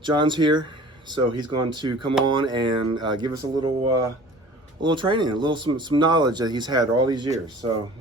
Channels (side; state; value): both; normal; correlation 0.45